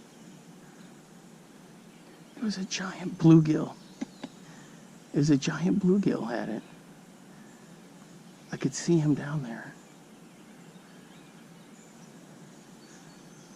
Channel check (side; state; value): both; identical; correlation 1.00